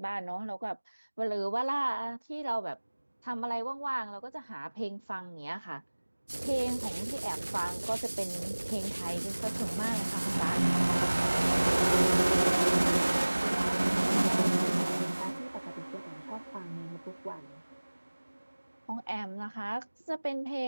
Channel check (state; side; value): inverted; both; correlation -1.00